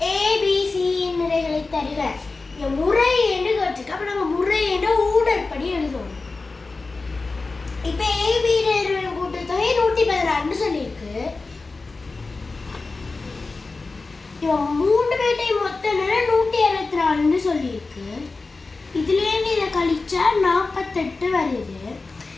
ஏபிசியின் நிறைகளை தருக. முறை என்று கேட்டிருக்கு. அப்போ நம்ம முறை என்ற ஊடற்படி எழுதுவோம். இப்போ ஏபி கூட்டுத்தொகை 116 சொல்லியிருக்கு. இவன் 3 பேர்ட்டையும் மொத்த நேரம் 164 சொல்லியிருக்கு. இதுலேருந்து இதை கழிச்சா 48 வருது.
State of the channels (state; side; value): quieter; right; 3.8 dB